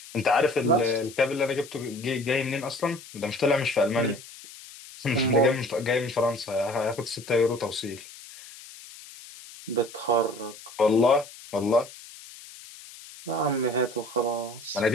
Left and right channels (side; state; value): left; noise; hiss, 17 dB below the sound